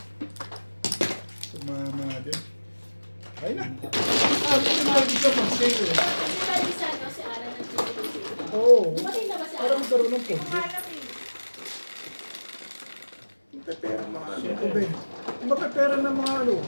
Tumama din. Kain na. Mag-isa mag-save eh. Kasi lagi sa ano, si Ara nagtutulog. Oo. Dumating na ba si Para Ara? magkaroon ng pondo. Pepera mga ano ko ba? Mapepera ng mga ano,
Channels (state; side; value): inverted; both; correlation -1.00